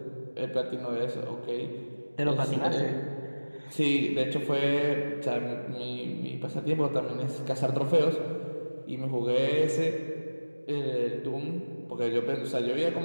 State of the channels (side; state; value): both; inverted; correlation -1.00